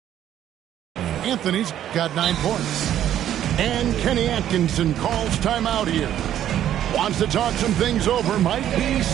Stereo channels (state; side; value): quieter; left; 11.2 dB